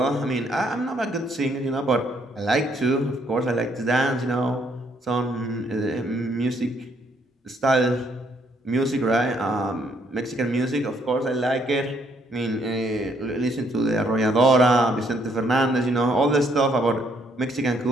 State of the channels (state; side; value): normal; both; correlation 0.70